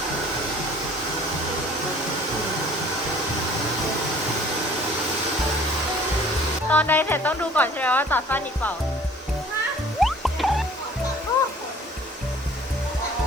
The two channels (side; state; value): both; normal; correlation 0.51